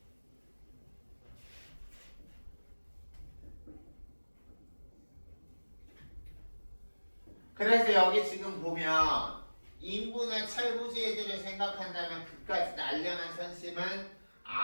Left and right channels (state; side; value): inverted; both; correlation -1.00